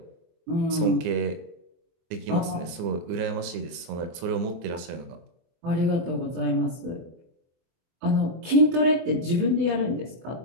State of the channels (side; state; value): left; late; 24 ms